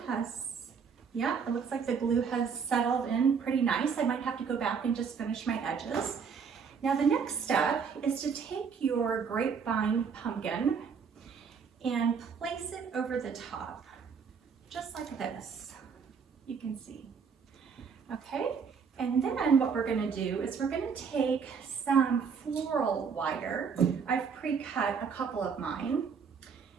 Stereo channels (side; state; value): left; quieter; 6.2 dB